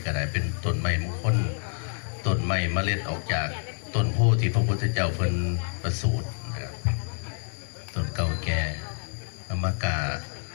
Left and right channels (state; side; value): silent; right; 55 dB below the other